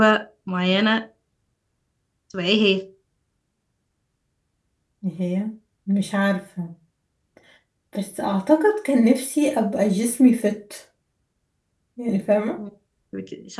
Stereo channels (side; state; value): both; identical; correlation 1.00